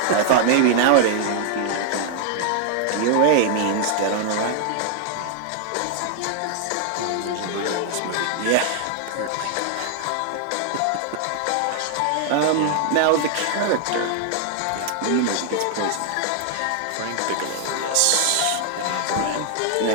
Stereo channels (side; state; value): both; different; correlation 0.00